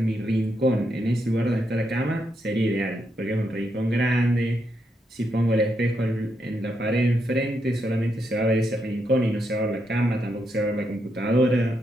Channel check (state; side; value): normal; both; correlation 0.81